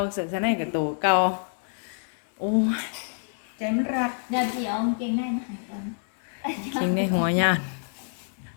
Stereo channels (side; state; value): right; silent; digital silence